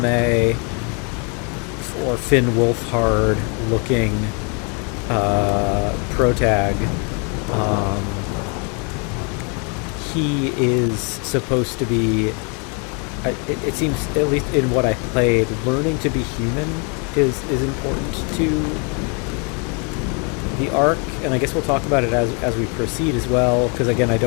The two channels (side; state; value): right; quieter; 35.7 dB